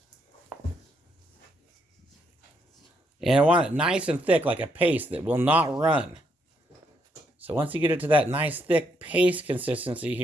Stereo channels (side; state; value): both; normal; correlation 0.75